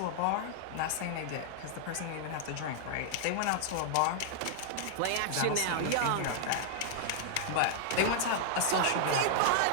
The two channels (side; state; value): both; different; correlation -0.01